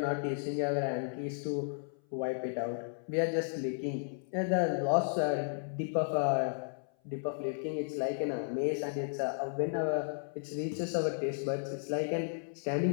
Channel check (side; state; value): right; silent; 55 dB below the other